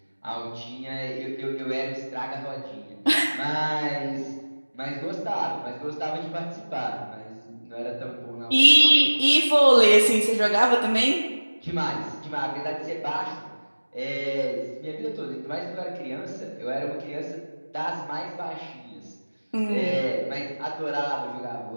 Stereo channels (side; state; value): both; inverted; correlation -1.00